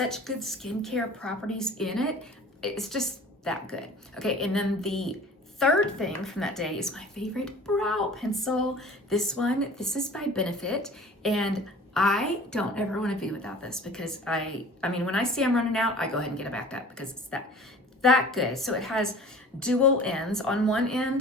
good skincare properties in it. It's just that good. Okay, and then the third thing from that day is my favorite brow pencil. This is by Benefit, and I don't ever want to be without this because I mean, when I see I'm running out, I go ahead and get it back up because it's that good. So it has dual ends. On one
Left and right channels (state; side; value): normal; both; correlation 0.45